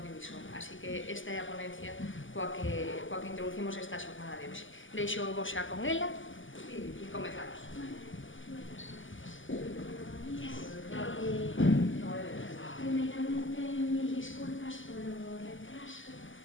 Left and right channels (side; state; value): right; late; 0.57 ms